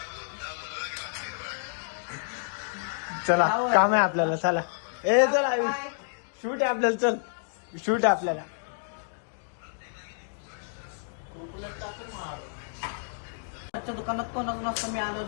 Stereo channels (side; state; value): right; silent; digital silence